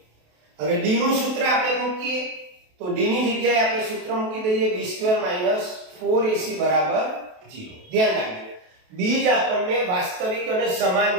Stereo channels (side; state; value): left; late; 28 ms